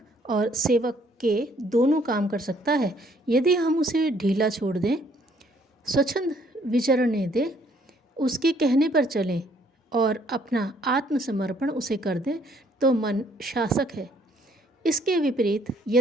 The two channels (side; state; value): both; normal; correlation 0.65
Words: और सेवक के दोनों काम कर सकता है यदि हम उसे ढीला छोड़ दें, स्वच्छंद विचरने दें, उसके कहने पर चलें और अपना आत्मसमर्पण उसे कर दें तो मन शासक है। इसके विपरीत